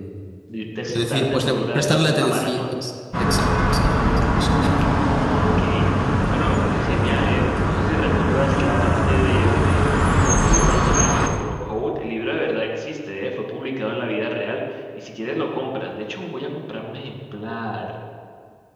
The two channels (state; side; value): identical; both; correlation 1.00